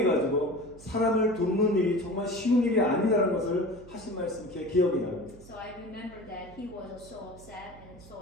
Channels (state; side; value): noise; right; hum, 20 dB below the sound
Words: 사람을 돕는 일이 정말 쉬운 일이 아니라는 것을 하신 말씀 제 기억이 납니다. So I remember that he was so upset and so